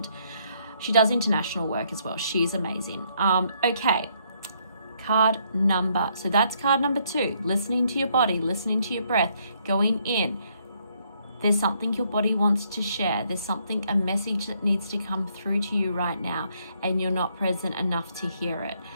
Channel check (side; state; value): both; inverted; correlation -0.71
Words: She does international work as well. She's amazing. Okay, card number. So that's card number 2. Listening to your body, listening to your breath, going in. There's something your body wants to share. There's something, a message that needs to come through to you right now, and you're not present enough to hear it.